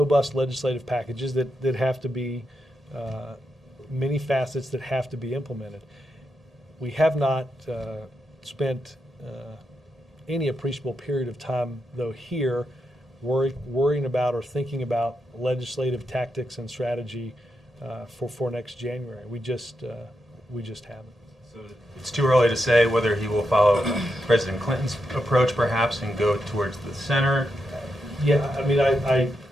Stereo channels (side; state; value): both; normal; correlation 0.85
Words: legislative packages that have to be, many facets that have to be implemented. We have not spent any appreciable period of time, though, here worrying about or thinking about legislative tactics and strategy for next January. We just haven't. So it's too early to say whether he will follow President Clinton's approach, perhaps, and go towards the center. Yeah, I mean,